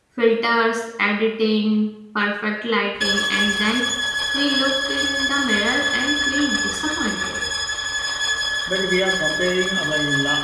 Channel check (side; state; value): both; identical; correlation 1.00